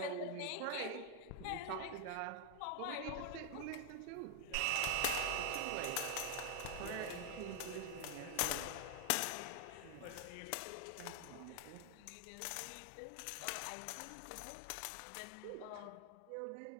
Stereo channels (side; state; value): both; different; correlation 0.00